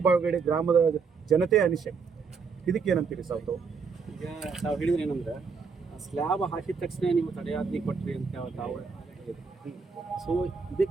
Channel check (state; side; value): quieter; left; 5.3 dB